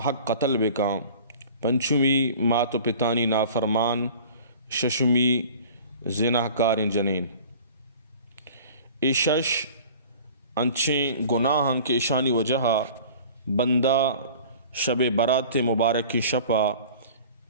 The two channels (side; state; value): both; inverted; correlation -0.44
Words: قتل بکا پنچمی مات و پتانی نافرمان ششمی زناہ کار جنین شش انچیں گناہاں کے اشانی وجہ بندہ شب برات مبارک کی شپا